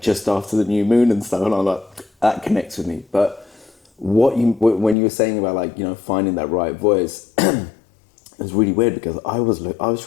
just after the new moon and stuff. And I'm like, that connects with me. But when you were saying about like, you know, finding that right voice, it was really weird, because I was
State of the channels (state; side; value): drops out; right; at 5.0 s